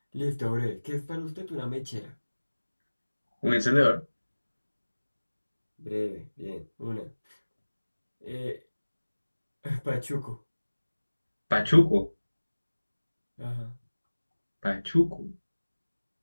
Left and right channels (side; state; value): both; inverted; correlation -1.00